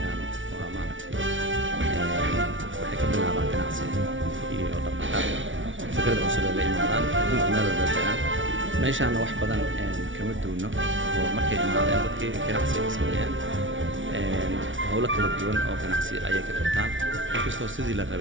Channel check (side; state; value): left; late; 0.56 ms